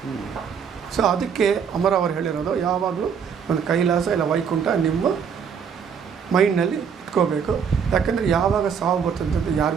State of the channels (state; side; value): quieter; left; 6.9 dB